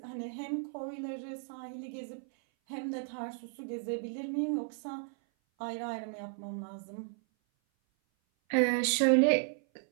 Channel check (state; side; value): silent; left; 55 dB below the other